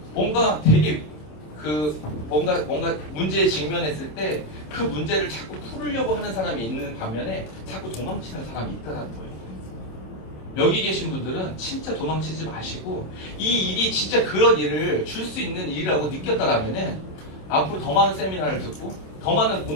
뭔가 되게 뭔가 문제에 직면했을 때 그 문제를 자꾸 풀으려고 하는 사람이 있는 반면에 자꾸 도망치는 사람이 있다는 거예요. 여기 계신 분들은 진짜 도망치지 마시고 이 일이 진짜 그런 일을 줄 수 있는 일이라고 느꼈다라면은 앞으로 더 많은 세미나를 듣고 더 많은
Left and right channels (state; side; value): late; right; 26 ms